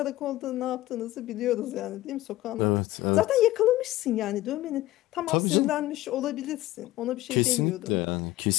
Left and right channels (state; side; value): quieter; right; 16.5 dB